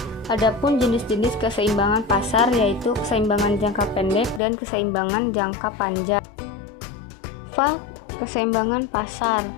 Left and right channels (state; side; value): drops out; right; at 4.4 s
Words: Adapun jenis-jenis keseimbangan pasar yaitu keseimbangan jangka pendek dan keseimbangan jangka panjang. Keseimbangan pasar.